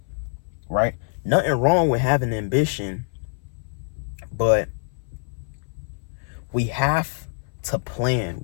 right? Nothing wrong with having ambition, but we have to plan.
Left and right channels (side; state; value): right; silent; 59 dB below the other